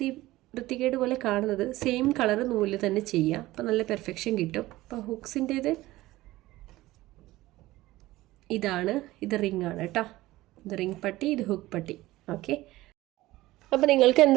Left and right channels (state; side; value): quieter; left; 17.6 dB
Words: വൃത്തികേട് പോലെ കാണുന്നത്. സെയിം കളർ നൂലിൽ തന്നെ ചെയ്യുക, അപ്പോൾ നല്ല പെർഫെക്ഷൻ കിട്ടും. അപ്പോൾ ഹുക്സിൻ്റേത് ഇതാണ്, ഇത് റിംഗ് ആണ് കേട്ടോ. ഇത് റിംഗ് പട്ടി, ഇത് ഹുക്ക് പട്ടി. ഓക്കെ, അപ്പോൾ നിങ്ങൾക്ക്